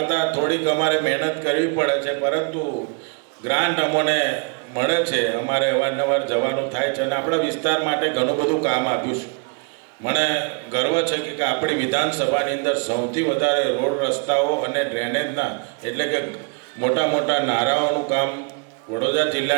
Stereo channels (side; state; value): left; quieter; 37.0 dB